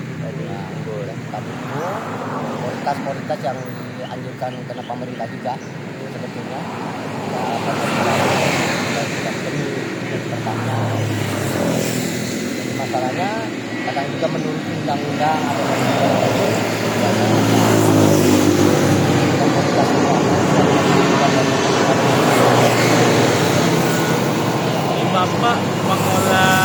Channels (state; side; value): identical; both; correlation 1.00